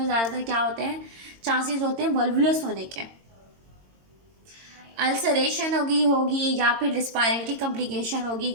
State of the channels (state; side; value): late; left; 22 ms